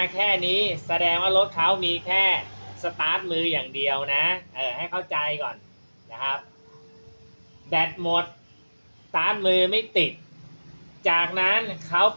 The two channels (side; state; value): both; inverted; correlation -1.00